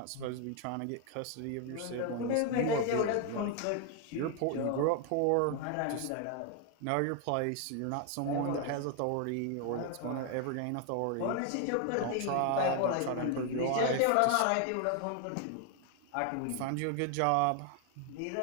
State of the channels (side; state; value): both; different; correlation 0.00